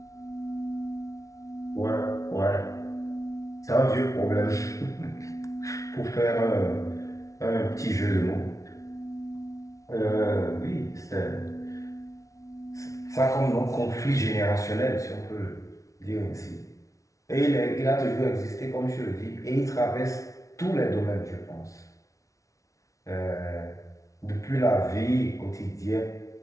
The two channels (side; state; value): right; late; 0.16 ms